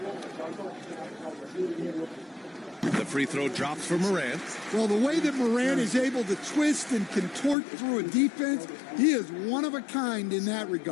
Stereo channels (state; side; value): drops out; right; at 7.6 s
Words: The free throw drops for Morant. Well, the way that Morant is able to twist and contort through a defense, he is one of a kind in that